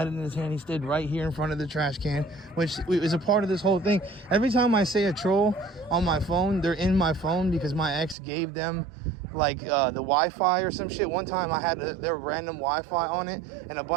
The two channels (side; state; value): left; drops out; at 8.2 s